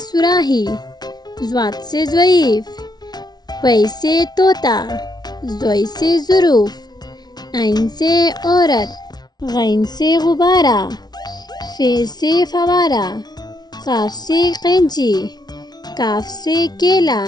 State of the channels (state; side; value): late; right; 0.19 ms